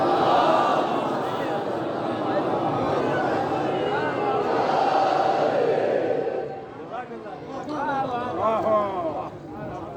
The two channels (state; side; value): identical; both; correlation 1.00